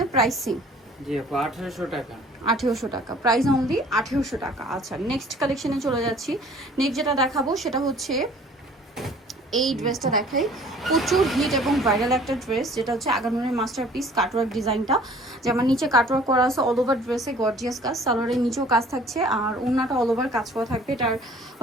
প্রাইস সেম। জি আপু, 1800 টাকা। 1800 টাকা, প্রাইস অনলি 1800 টাকা। আচ্ছা, নেক্সট কালেকশনে চলে যাচ্ছি। নেক্সট যেটা দেখাবো সেটা হচ্ছে এই ড্রেসটা দেখাই। প্রচুর হিট এবং ভাইরাল একটা ড্রেস, যেটা হচ্ছে আগানুরের মাস্টারপিস কাটওয়ার্ক ডিজাইনটা। যেমন নিচে কাটওয়ার্ক করা আছে, অল ওভার ড্রেসে গর্জিয়াস কাজ, সালোয়ারের নিচেও কাজ থাকছে, আর ওন্নাটা অল ওভার কাজ করা থাকবে। এটার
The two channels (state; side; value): normal; both; correlation 0.52